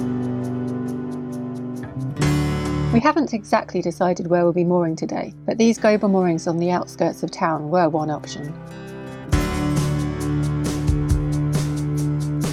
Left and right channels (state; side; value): identical; both; correlation 1.00